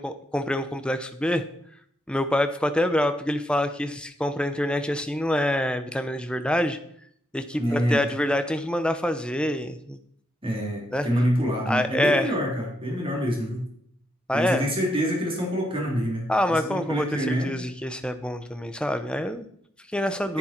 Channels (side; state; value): both; normal; correlation 0.80